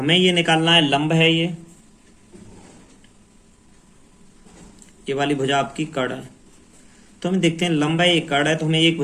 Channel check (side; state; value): both; identical; correlation 1.00